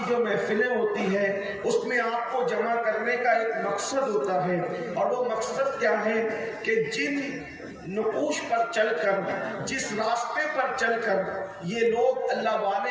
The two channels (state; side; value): identical; both; correlation 1.00